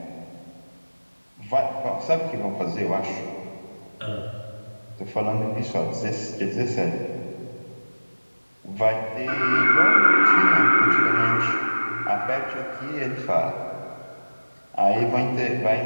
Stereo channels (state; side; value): inverted; both; correlation -1.00